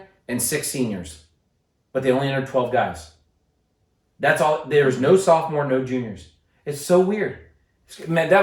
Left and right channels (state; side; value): identical; both; correlation 1.00